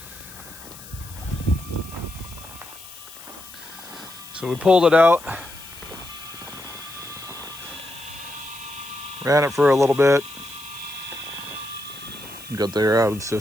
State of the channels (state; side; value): noise; left; hiss, 16 dB below the sound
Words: So we pulled it out, ran it for a little bit, got the air out of the